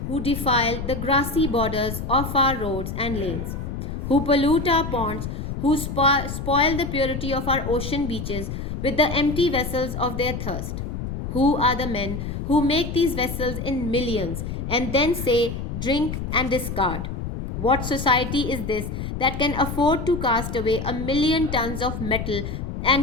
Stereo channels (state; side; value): noise; left; rumble, 5 dB below the sound